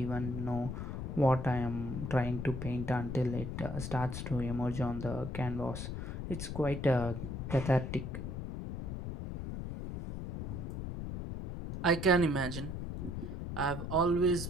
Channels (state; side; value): noise; left; rumble, 5 dB below the sound